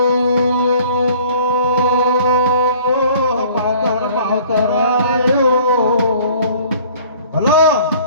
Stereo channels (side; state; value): both; inverted; correlation -0.51